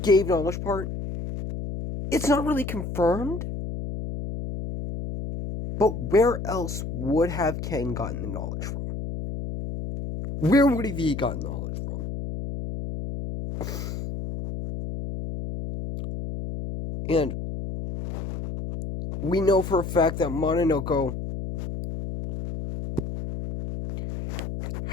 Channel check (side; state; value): left; noise; hum, 6 dB below the sound